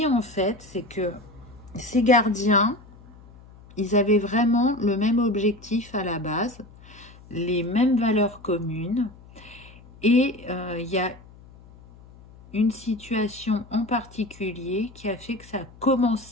en fait, c'est que ces gardiens, ils avaient vraiment le même objectif à la base, les mêmes valeurs communes, et il y a une situation en particulier qui a fait que ça a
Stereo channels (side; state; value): left; noise; hum, 22 dB below the sound